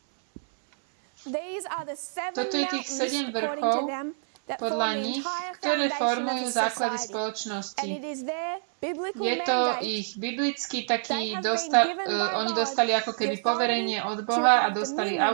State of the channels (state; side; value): silent; left; 60 dB below the other